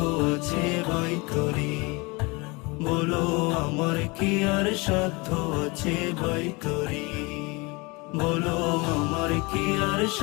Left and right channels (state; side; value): quieter; right; 26.5 dB